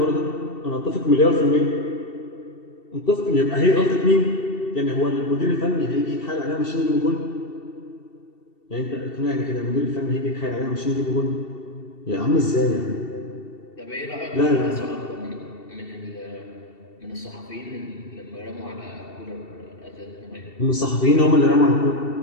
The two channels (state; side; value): late; right; 2.7 ms